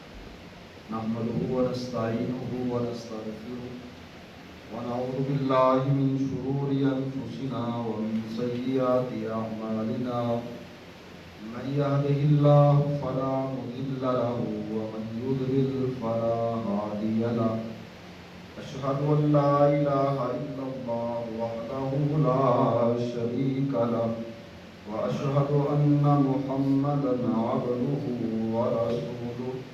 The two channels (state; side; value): identical; both; correlation 1.00